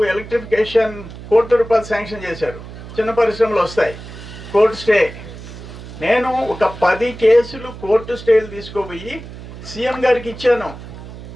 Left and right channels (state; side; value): noise; right; hum, 14 dB below the sound